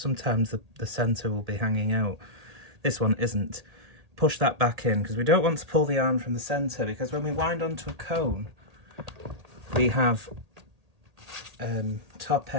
the centre will be hanging out. This one isn't. Push that back in, because we don't want to pull the yarn from the centre, because when we wind onto a cone, we have top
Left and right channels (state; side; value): late; left; 1.8 ms